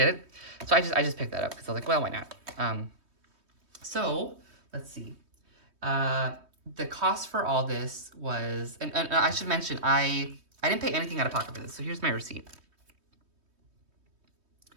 it. So I just picked that up because I was like, well, why not? So let's see. The cost for all this was, and I should mention, I didn't pay anything out of pocket for this, so here's my receipt.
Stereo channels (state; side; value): late; left; 3.2 ms